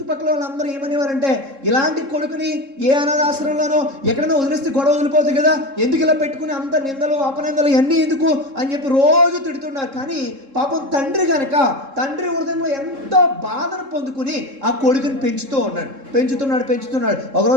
వాళ్ళందరూ ఏమనేవారంటే ఇలాంటి కొడుకుని ఏ అనాథాశ్రమంలోనో ఎక్కడైనా వదిలేస్తే గొడవ వదిలిపోతుంది కదా, ఎందుకు ఇలా పెట్టుకుని అంత నిందలు అపనిందలు ఇవన్నీ ఎందుకు అని చెప్పి రోజు తిడుతున్నారు. కానీ పాపం తండ్రి హృదయంలో ఎంతో బాధను పొందుకుని ఆ కొడుకుని పెంచుతున్నాడు.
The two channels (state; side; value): late; left; 3.7 ms